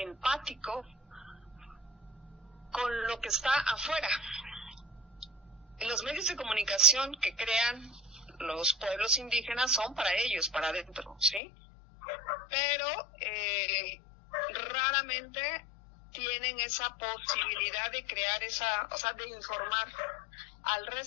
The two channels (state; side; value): drops out; right; at 11.4 s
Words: con lo que está afuera. Los medios de comunicación que crean los pueblos indígenas son para ellos, para adentro, ¿sí? Pero raramente tienen esa posibilidad de crear de informar al